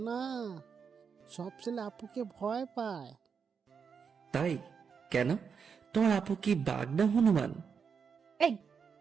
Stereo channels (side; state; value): left; quieter; 6.3 dB